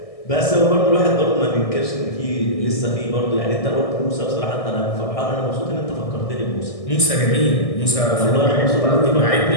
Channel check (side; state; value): right; late; 1.6 ms